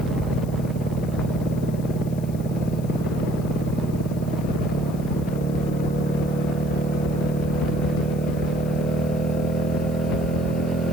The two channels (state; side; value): noise; left; hiss, 21 dB below the sound